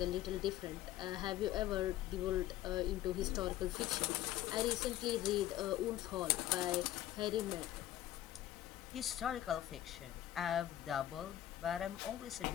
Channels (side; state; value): right; quieter; 13.3 dB